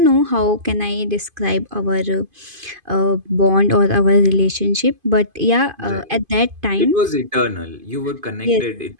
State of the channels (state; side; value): late; left; 2.5 ms